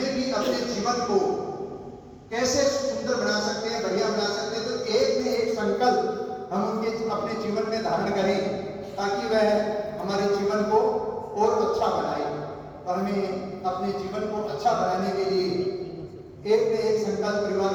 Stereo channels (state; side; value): identical; both; correlation 1.00